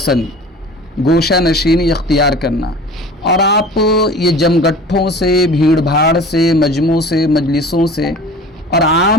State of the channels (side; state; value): both; normal; correlation 0.41